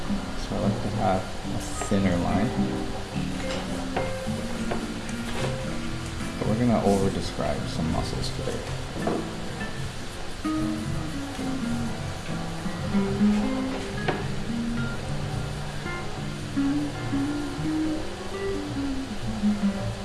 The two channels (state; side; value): identical; both; correlation 1.00